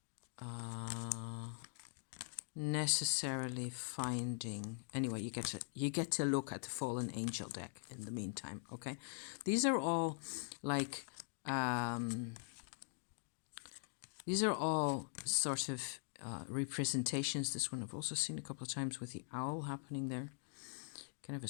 necessarily finding. Anyway, you get to look at the Fallen Angel deck in the meantime. Okay, these are all like these are all sort of representations. This one I've also seen a couple of times with the owl happening there. Kind of a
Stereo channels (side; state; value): right; silent; digital silence